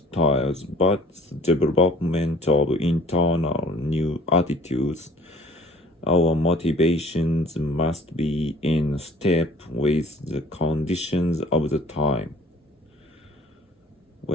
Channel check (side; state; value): both; normal; correlation 0.51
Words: but the development of internal new attitudes. Our motivations must be in step with the conditions of the time.